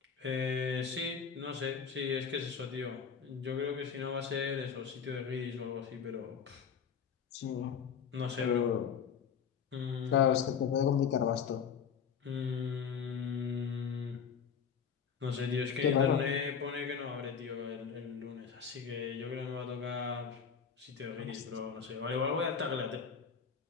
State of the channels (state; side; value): quieter; right; 6.9 dB